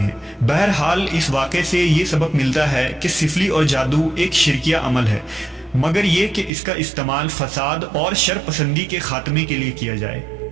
ہیں۔ بہرحال اس واقعے سے یہ سبق ملتا ہے کہ سفلی اور جادو ایک شرکیہ عمل ہے، مگر یہ کہ اس کا استعمال فساد اور شر پسندی کے خاتمے کے لیے کیا جائے۔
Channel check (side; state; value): left; drops out; at 6.5 s